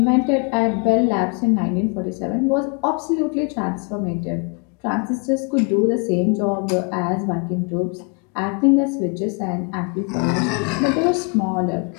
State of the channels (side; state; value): right; quieter; 35.3 dB